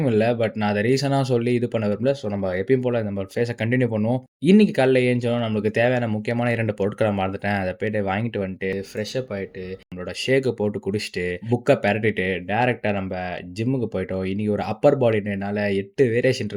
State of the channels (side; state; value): both; identical; correlation 1.00